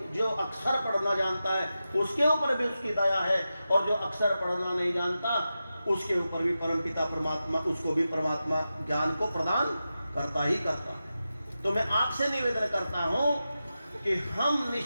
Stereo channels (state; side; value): inverted; both; correlation -0.92